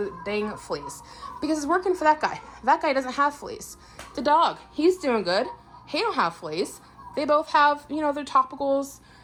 dang fleas, because it's working for that guy. That guy doesn't have fleas. The dog, he's doing good. He don't have fleas. They both have, their topicals.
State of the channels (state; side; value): identical; both; correlation 1.00